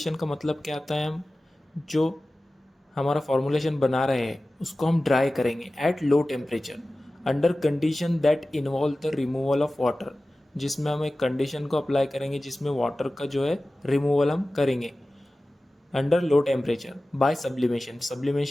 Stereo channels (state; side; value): normal; both; correlation 0.96